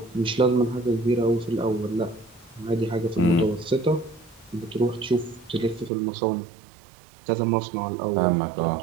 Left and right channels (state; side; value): drops out; left; at 5.9 s